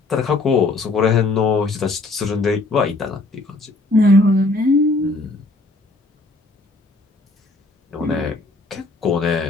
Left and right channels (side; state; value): right; quieter; 3.1 dB